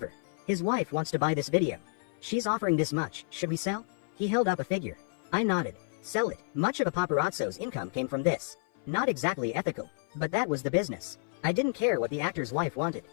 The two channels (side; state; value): right; silent; 56 dB below the other